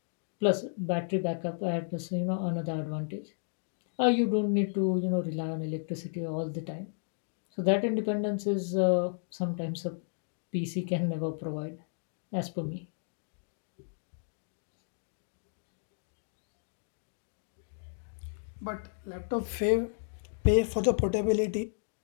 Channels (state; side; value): silent; right; digital silence